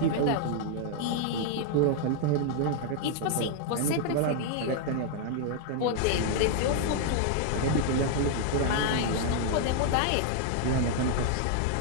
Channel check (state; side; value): different; both; correlation 0.00